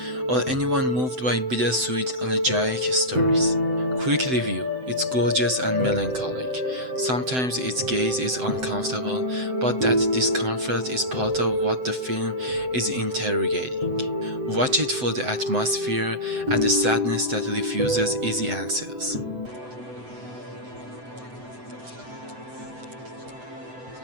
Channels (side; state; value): left; late; 7.9 ms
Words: or anyone moved by bittersweet elegiac stories? Quick review. It's gorgeous and melancholic. Sometimes its gaze is uncomfortable, but that discomfort is part of what the film is interrogating. Watch it for the atmosphere and the sadness that refuses easy answers.